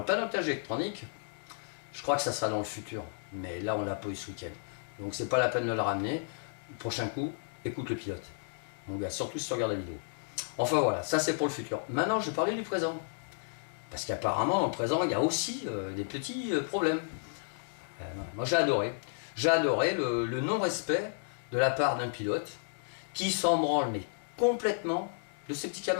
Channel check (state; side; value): silent; right; digital silence